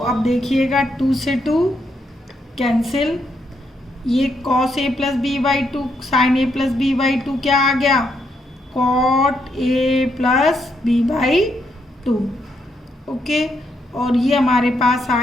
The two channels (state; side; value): normal; both; correlation 0.78